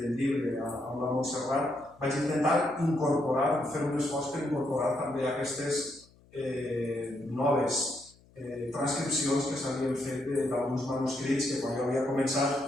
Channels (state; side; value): noise; left; hum, 28 dB below the sound